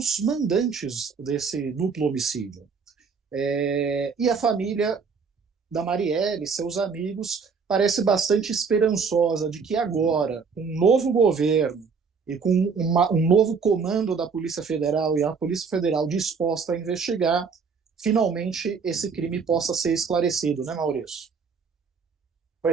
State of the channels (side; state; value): left; quieter; 5.5 dB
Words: mandantes desse duplo homicídio. E a família da Marielle, seus amigos, parece bastante esperançosa de que agora, com um novo governo e com um novo comando da Polícia Federal e a Polícia Federal disposta a investigar, finalmente esse crime possa ser esclarecido, né, Maurício?